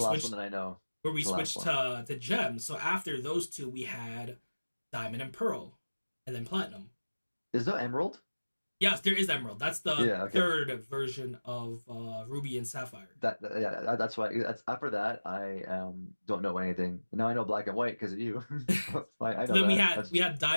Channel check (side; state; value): both; inverted; correlation -1.00